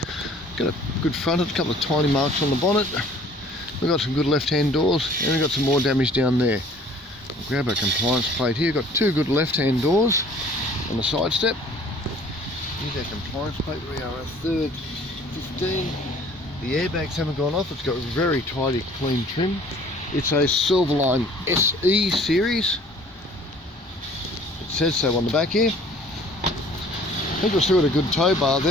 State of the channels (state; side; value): normal; both; correlation 0.52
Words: Got a good front, a couple of tiny marks on the bonnet. We've got some good left-hand doors, and we've got some more damage down there. I'll grab our compliance plate here. Got two good left-hand doors on the side step. Here's our compliance plate. We are at third 15. The airbags haven't gone off. It's got very tidy, clean trim. It's a Silverline SE series. It says so on the back here. I think we've still got a good tow bar